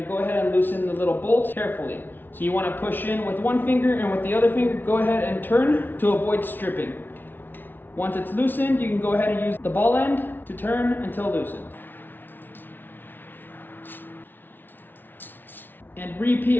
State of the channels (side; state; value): right; late; 0.094 ms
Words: to go ahead and loosen the little bolts carefully. So you want to push in with one finger, and with the other finger, go ahead and turn to avoid stripping. Once it's loosened, you can go ahead and use the ball end to turn until loosened. And repeat